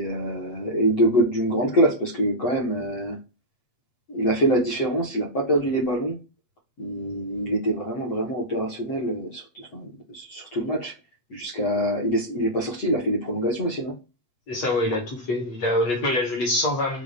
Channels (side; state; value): right; late; 8.0 ms